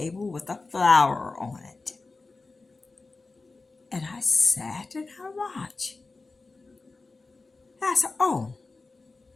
with a flower on it. And I sat and I watched. And I said, oh,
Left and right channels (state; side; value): quieter; right; 3.7 dB